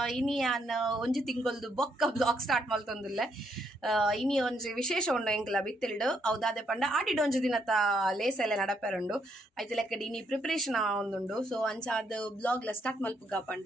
ಇನಿ ಯಾನ್ ಒಂಜಿ ತಿಂಗೊಲ್ದು ಬೊಕ್ಕ ಬ್ಲಾಗ್ ಸ್ಟಾರ್ಟ್ ಮಲ್ತೊಂದುಲ್ಲೆ ಇನಿ ಒಂಜಿ ವಿಶೇಷ ಉಂಡು ಎಂಕ್ಲ ಬಿತ್ತಿಲ್ಡು ಹೌದಾದೆ ಪಂಡ ಆಡಿಡ್ ಒಂಜಿ ದಿನತ ಲೇಸ್ ಎಲ್ಲ ನಡಪೆರುಂಡು ಐತೆ ಲೆಕ್ಕಡಿ ಇನಿ ಪ್ರಿಪರೇಷನ್ ಒಂದುಂಡು ಸೊ ಅಂಚಾದ ಬ್ಲಾಗ್ ಲ ಸ್ಟಾರ್ಟ್ ಮಲ್ಪುಗ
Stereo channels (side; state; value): both; normal; correlation 0.74